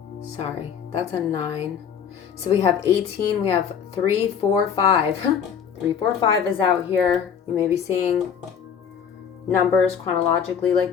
Sorry, that's a 9. So we have 18, we have 3, 4, 5. 3, 4, 5 is out here. You may be seeing numbers chronologically like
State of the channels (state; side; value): quieter; right; 7.6 dB